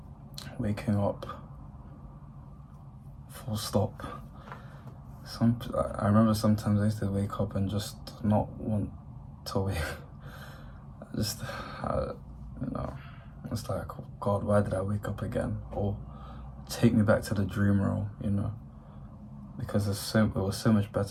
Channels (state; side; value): identical; both; correlation 1.00